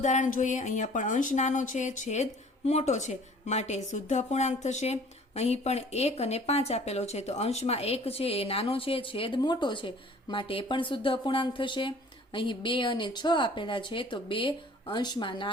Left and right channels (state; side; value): normal; both; correlation 0.51